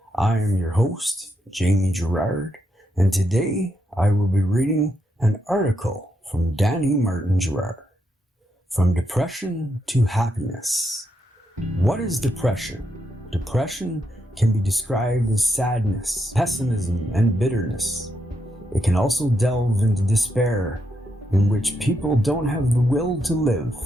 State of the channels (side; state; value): both; normal; correlation 0.81